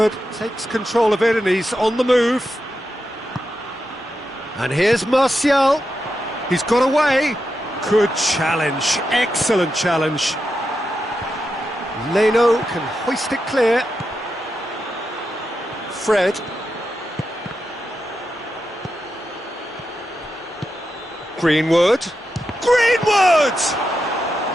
takes control of it and he's on the move. And here's Martial. He's got away. Good challenge. Excellent challenge. Leno can hoist it clear. Fred. Greenwood. Greenwood!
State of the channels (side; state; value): both; normal; correlation 0.87